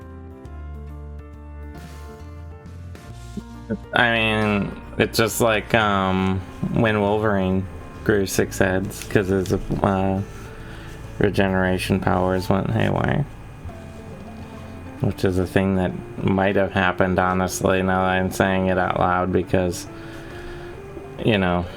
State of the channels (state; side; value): identical; both; correlation 1.00